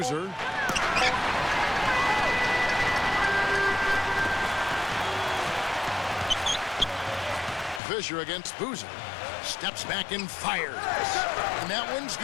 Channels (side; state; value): right; drops out; at 7.8 s